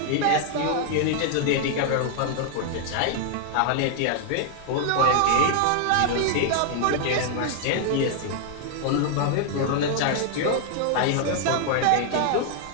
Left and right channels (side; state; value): both; different; correlation 0.00